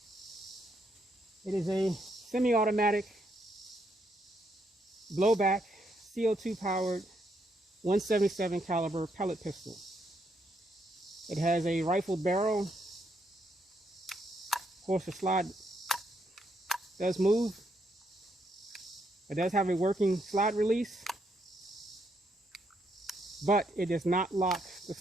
It is a semi-automatic blowback CO2 powered 177 caliber pellet pistol. It has a rifled barrel. Of course, the slide does move. It does have a working slide release, but it does not lock the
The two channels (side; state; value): both; normal; correlation 0.76